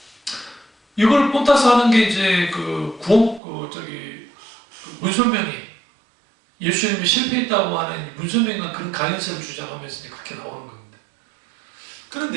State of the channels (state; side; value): drops out; left; at 3.4 s